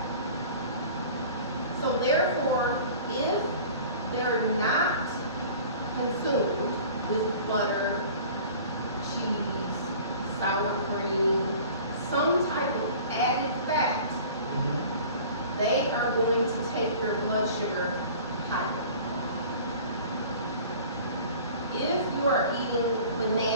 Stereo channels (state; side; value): inverted; both; correlation -0.44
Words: So therefore, if they're not consumed with butter, cheese, sour cream, some type of added fat, they are going to take your blood sugar higher. If you are eating